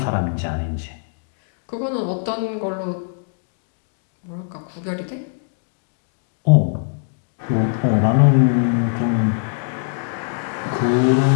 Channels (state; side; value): silent; right; 60 dB below the other